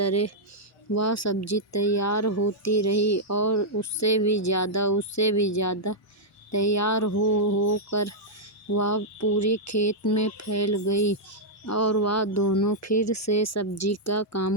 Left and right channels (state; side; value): normal; both; correlation -0.06